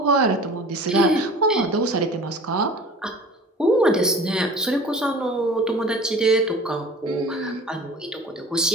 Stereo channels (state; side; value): normal; both; correlation 0.42